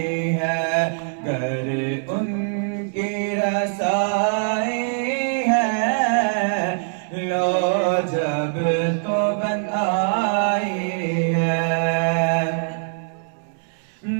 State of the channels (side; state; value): left; silent; 64 dB below the other